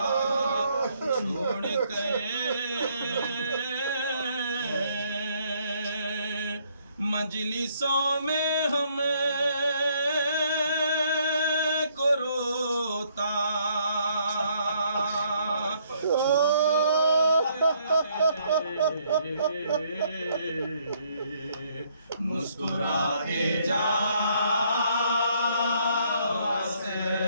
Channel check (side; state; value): both; inverted; correlation -0.68